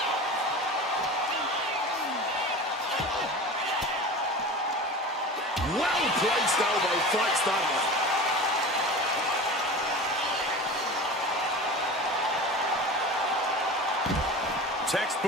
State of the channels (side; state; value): both; normal; correlation 0.33